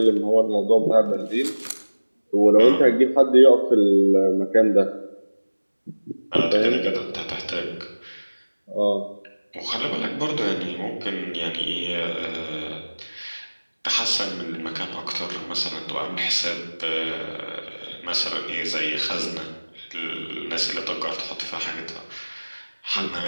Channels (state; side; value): inverted; both; correlation -1.00